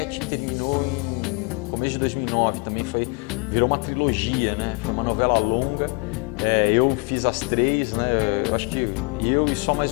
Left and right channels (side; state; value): right; quieter; 31.0 dB